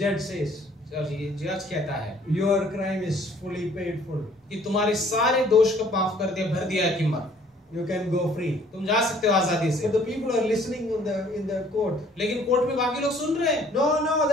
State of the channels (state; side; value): normal; both; correlation 0.58